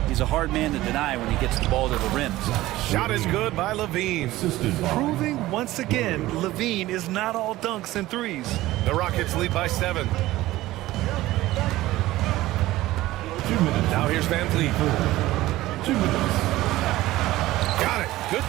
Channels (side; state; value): left; quieter; 16.8 dB